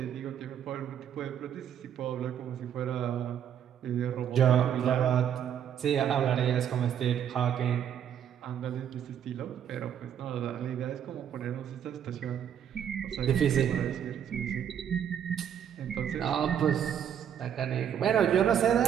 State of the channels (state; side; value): quieter; left; 9.1 dB